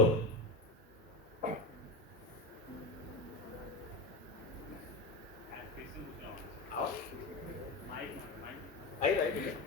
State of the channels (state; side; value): normal; both; correlation 0.21